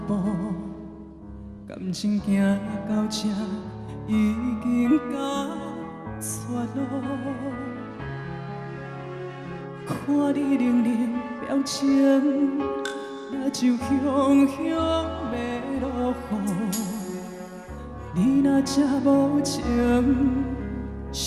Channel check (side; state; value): both; identical; correlation 1.00